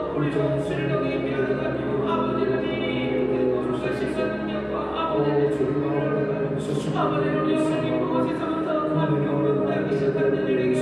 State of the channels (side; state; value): both; identical; correlation 1.00